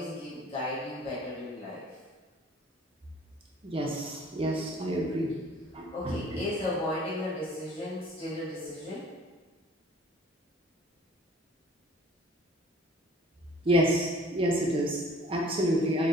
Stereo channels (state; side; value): normal; both; correlation 0.52